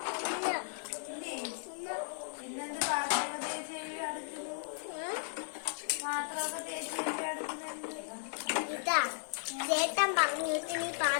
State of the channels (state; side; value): silent; right; digital silence